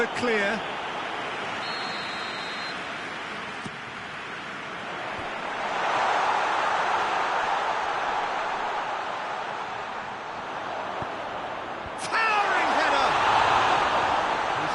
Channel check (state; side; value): identical; both; correlation 1.00